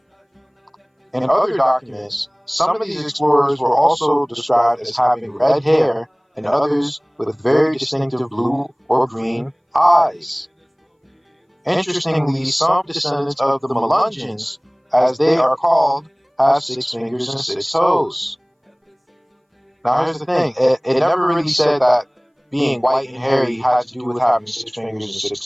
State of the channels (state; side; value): identical; both; correlation 1.00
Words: in other documents, some of these explorers were also described as having red hair and others with very distinctive blue or green eyes. Interestingly, some descendants of the Melungeons, as they are called, have 6 fingers and 6 toes. Now here's the thing, it never really said that being white and hairy had to do with having 6 fingers and 6